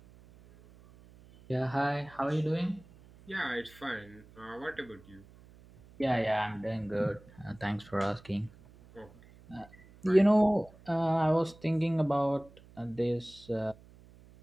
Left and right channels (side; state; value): right; noise; hum, 24 dB below the sound